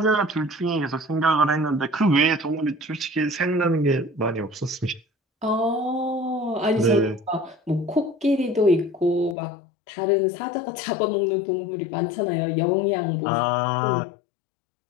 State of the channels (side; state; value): right; drops out; at 9.3 s